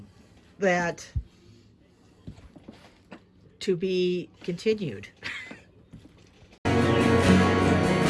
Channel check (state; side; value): identical; both; correlation 1.00